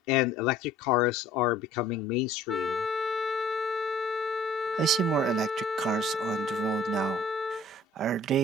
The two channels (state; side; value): normal; both; correlation 0.53